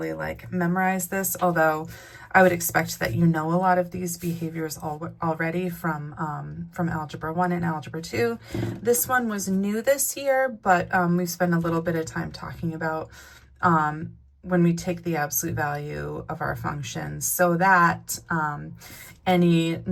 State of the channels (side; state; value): both; identical; correlation 1.00